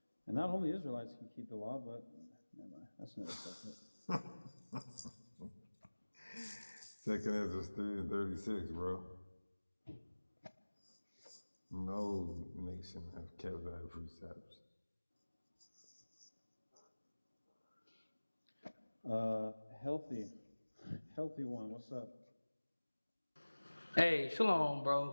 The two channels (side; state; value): both; inverted; correlation -1.00